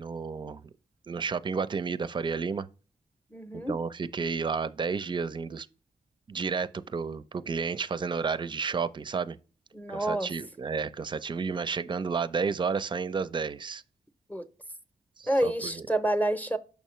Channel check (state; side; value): quieter; left; 3.6 dB